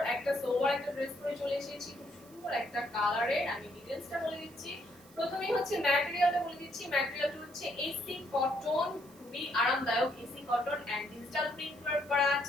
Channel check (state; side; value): noise; right; hiss, 24 dB below the sound